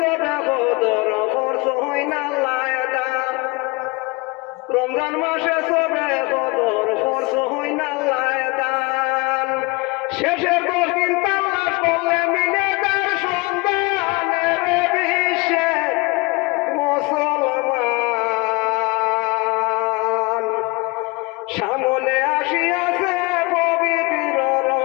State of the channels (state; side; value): quieter; right; 26.5 dB